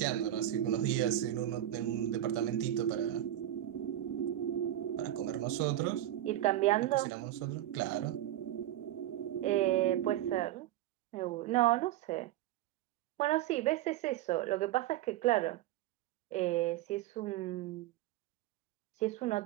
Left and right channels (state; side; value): quieter; left; 13.2 dB